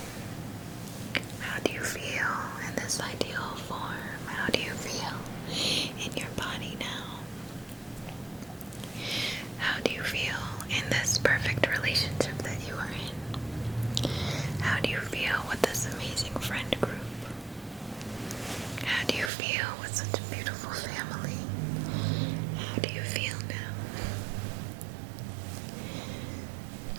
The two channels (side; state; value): left; drops out; at 19.3 s